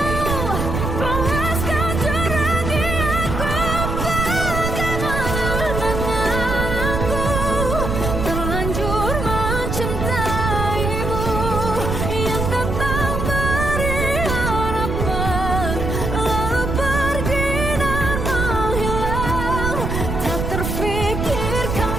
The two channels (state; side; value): noise; right; rumble, 2 dB below the sound